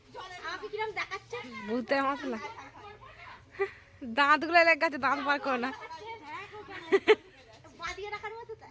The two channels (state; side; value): identical; both; correlation 1.00